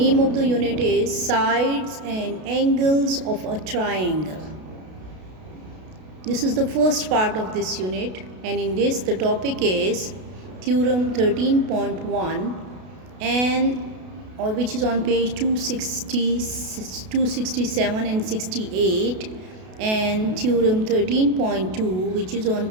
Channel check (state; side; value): late; left; 32 ms